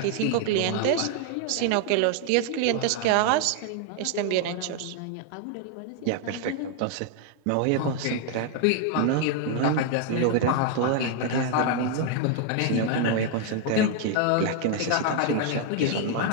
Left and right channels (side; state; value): both; different; correlation 0.00